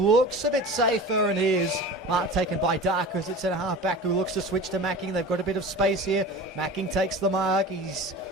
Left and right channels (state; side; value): normal; both; correlation 0.35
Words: looks a bit safer, and is. Mark taken by Darker as it's a half back who looks to switch to Macking. They've got a bit of space here. Macking takes the mark. He's